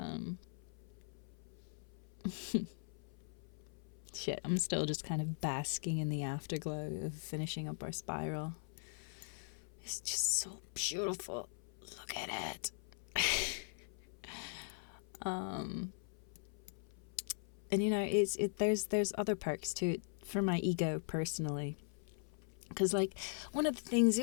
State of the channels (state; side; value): silent; right; 51 dB below the other